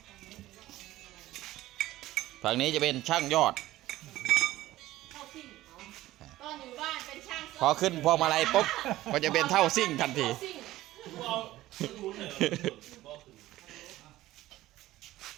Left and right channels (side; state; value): left; quieter; 15.9 dB